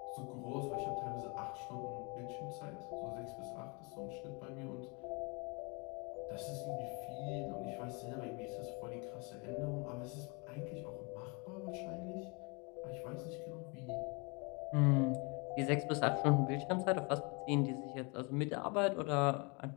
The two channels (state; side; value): quieter; right; 31.0 dB